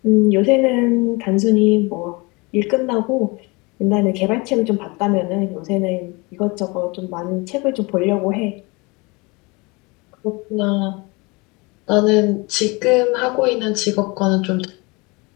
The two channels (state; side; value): quieter; right; 26.5 dB